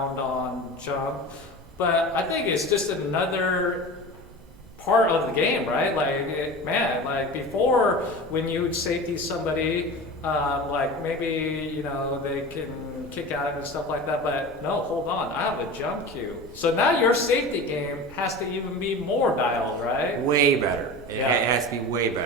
on jump, but I think it's just another part of the game, right? Like before, when you would safety somebody, like maybe they can kick out and stuff like that, but no, hold on, I have a jump cue. So now your safety game has to even be more dialed, right? Way better. It Yeah. has to be way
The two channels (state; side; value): normal; both; correlation 0.32